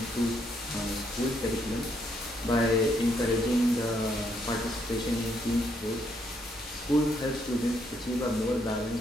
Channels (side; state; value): both; normal; correlation 0.73